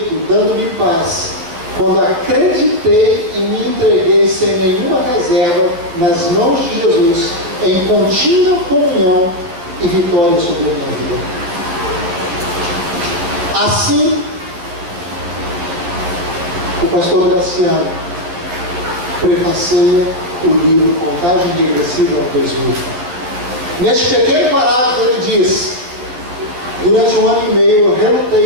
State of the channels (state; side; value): late; left; 12 ms